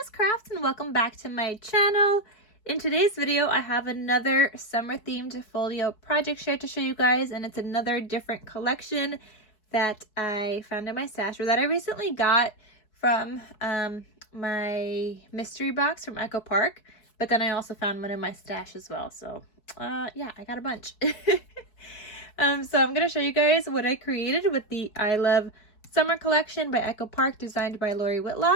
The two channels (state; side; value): late; right; 4.7 ms